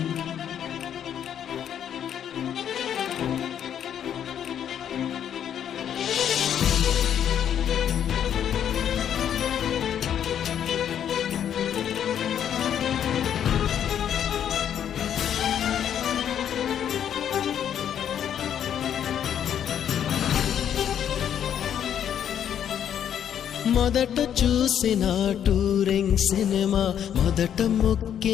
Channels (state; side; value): quieter; right; 9.4 dB